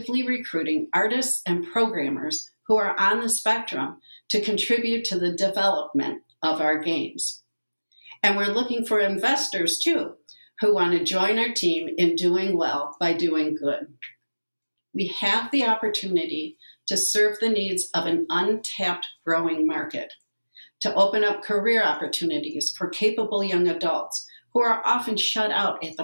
recruiting artists and programmers who are on the spectrum to contribute to the development of our games. And we're looking for investors too, who want to join our team in doing well by doing good. We have the opportunity to serve the needs of an untapped growing market, to open up career opportunities for capable young adults who are often shut out at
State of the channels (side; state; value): both; inverted; correlation -0.99